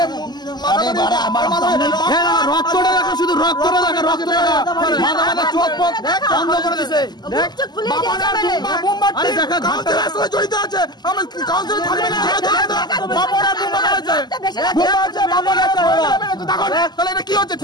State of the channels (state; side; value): late; right; 0.21 ms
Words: রক্তটা দেখো, শুধু রক্তটা দেখো, রক্তটা মাথা মাথা চোখ পথ বন্ধ করে দিছে। জড়িত আছে, আমার কাউন্সিলর থাকবে না, তাহলে এটা কি হচ্ছে?